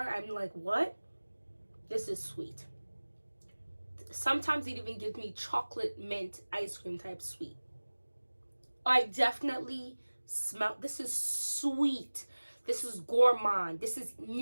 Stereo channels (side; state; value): both; inverted; correlation -1.00